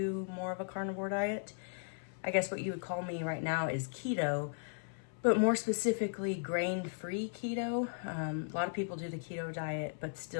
more of a carnivore diet. I guess what you would call me right now is keto, but more specifically grain-free keto. A lot of people do the keto diet but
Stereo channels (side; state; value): right; silent; 53 dB below the other